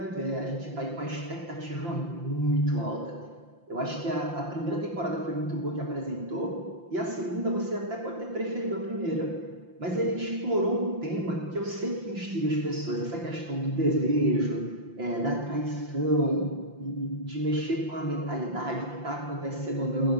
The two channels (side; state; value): left; late; 5.8 ms